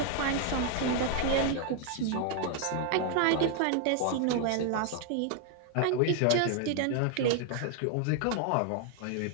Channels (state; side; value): different; both; correlation 0.00